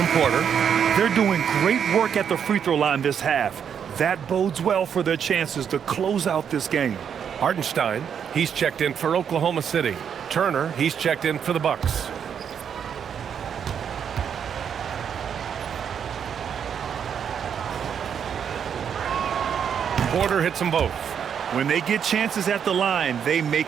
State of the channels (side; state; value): left; quieter; 7.9 dB